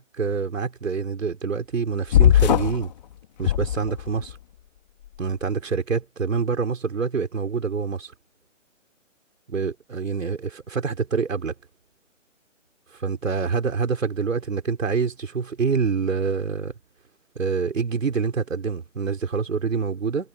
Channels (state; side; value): normal; both; correlation -0.15